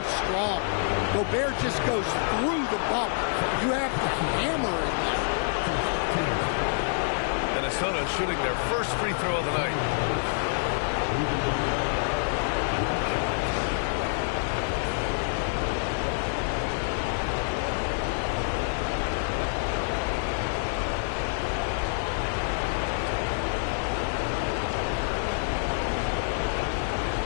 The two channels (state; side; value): silent; right; 57 dB below the other